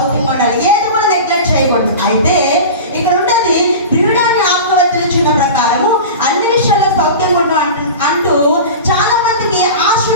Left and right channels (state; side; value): inverted; both; correlation -0.32